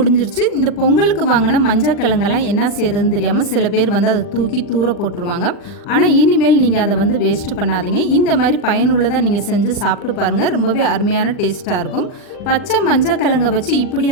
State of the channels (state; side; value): late; right; 40 ms